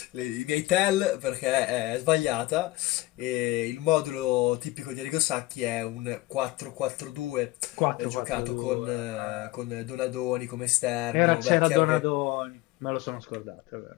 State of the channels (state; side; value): quieter; right; 19.0 dB